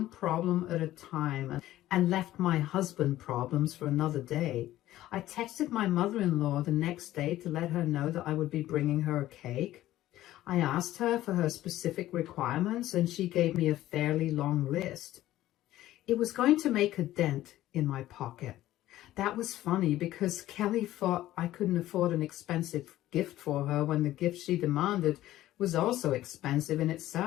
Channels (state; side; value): quieter; right; 14.6 dB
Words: problem at a time and left my husband problems for another day. I texted my mother-in-law the next day to let her know that I would be bringing her a cake. I asked her for her specific requirements and she gave me a fairly long list. It was going to make a dent in my pocket. That was funny because Kelly thought I couldn't afford an expensive gift for her when the gift she demanded was also expensive in